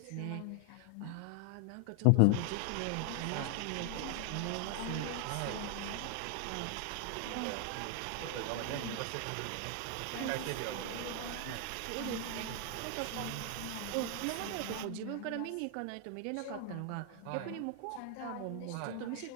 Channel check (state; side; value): different; both; correlation 0.00